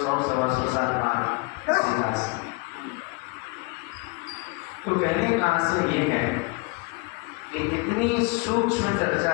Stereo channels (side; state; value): right; quieter; 29.2 dB